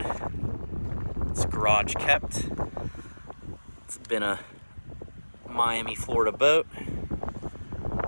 It's garage kept. It's been a Miami, Florida boat,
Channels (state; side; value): inverted; both; correlation -1.00